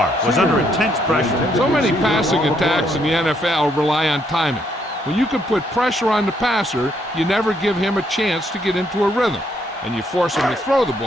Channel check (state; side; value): normal; both; correlation 0.72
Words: was under intense pressure. So many passing attacks in the NFL rely on timing. When you can put pressure on the passer, you never give him a chance to get into a rhythm, and you force him to throw the